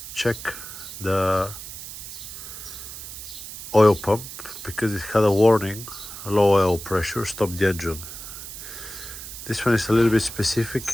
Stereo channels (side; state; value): right; noise; hiss, 11 dB below the sound